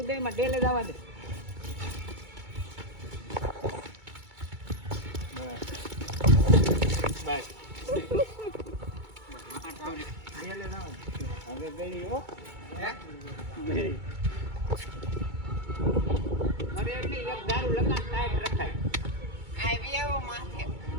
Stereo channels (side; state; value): left; late; 2.2 ms